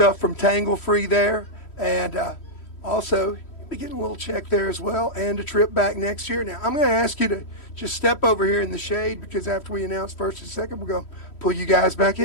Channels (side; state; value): right; late; 3.1 ms